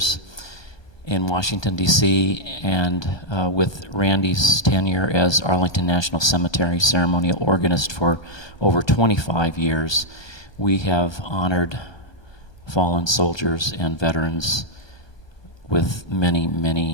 in Washington, D.C., and with Randy's tenure as Arlington National Cemetery ceremonial organist for over 25 years, we have honored fallen soldiers and veterans with many,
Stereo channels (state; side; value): late; right; 1.2 ms